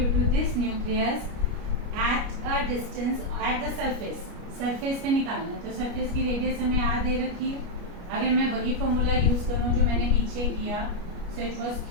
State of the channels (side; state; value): left; late; 29 ms